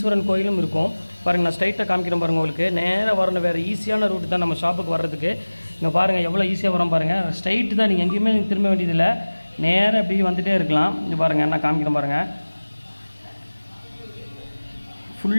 கோயிலும் இருக்கும் பாருங்கள். நான் ஸ்ட்ரைட்டாக காமிக்கிறேன் பாருங்கள். உங்களுக்கு நேராக வரணும், வேறு ஈஸியான ரூட் தான் நம்ம ஷாப்புக்கு வர்றதுக்கு. இங்கே பாருங்கள் எவ்வளோ ஈஸியாக வரோம் பாருங்கள். ஸ்ட்ரைட்டு தான், நீங்கள் எங்கேயுமே திரும்ப வேண்டியதில்லை, நேராக அப்படி வந்துகிட்டே இருக்கலாம். இங்கே பாருங்கள், நான் காமிக்கிறேன் பாருங்கள்.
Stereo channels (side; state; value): both; inverted; correlation -1.00